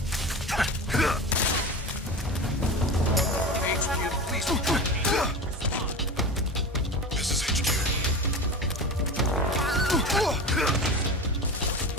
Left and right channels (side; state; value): both; normal; correlation 0.28